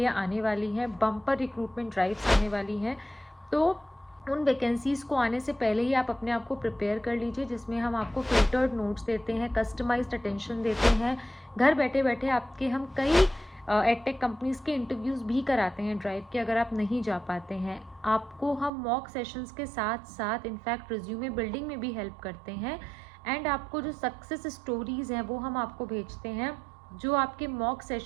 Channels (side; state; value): left; drops out; at 18.7 s